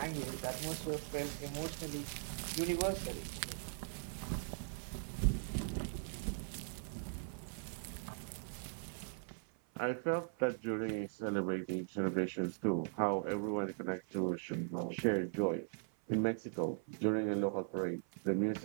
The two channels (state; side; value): silent; left; 51 dB below the other